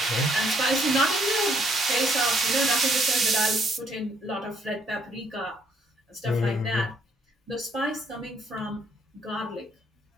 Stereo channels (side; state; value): both; normal; correlation 0.67